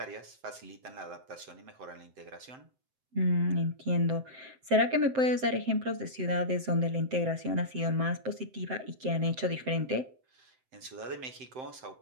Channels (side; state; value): left; late; 7.7 ms